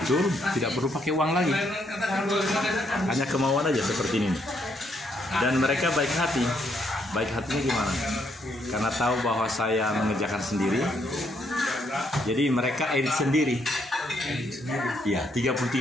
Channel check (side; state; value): both; normal; correlation 0.73